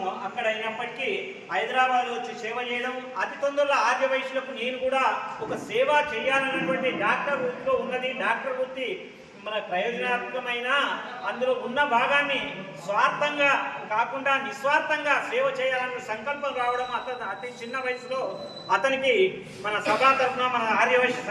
అక్కడ అయినప్పటికీ హైదరాబాద్ వచ్చి సేవ చేయడం, అతి తొందరలో ఆర్య వయసులకు నేను కూడా ఒక సేవ చేయాలన్నటువంటి డాక్టర్ వృత్తిలో ఉన్నది. డాక్టర్ వృత్తి మన ప్రయోజనాత్మకమైన అందులో ఉన్న భాగాన్ని స్వార్థంగా కాకుండా నిస్వార్థంగా సేవ చేయాలన్న సంకల్పం రావడం అతి చిన్న వయసులో అతనికి మన సభా తరఫున మన ఆర్యవైశ్య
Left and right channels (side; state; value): both; identical; correlation 1.00